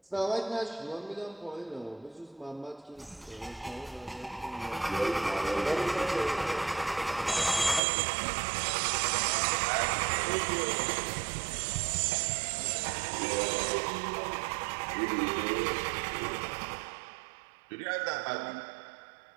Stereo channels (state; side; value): drops out; left; at 7.8 s